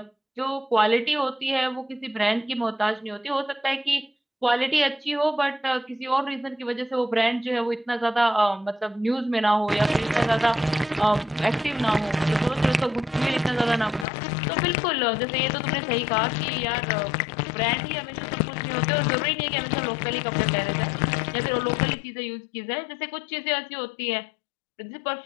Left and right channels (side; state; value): right; drops out; at 14.1 s